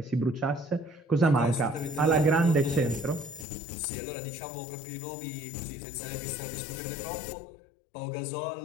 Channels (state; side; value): drops out; right; at 3.5 s